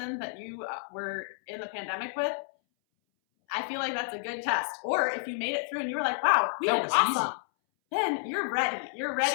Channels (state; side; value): silent; right; 58 dB below the other